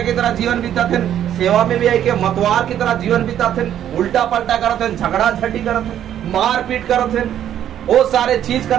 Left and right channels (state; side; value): quieter; left; 10.6 dB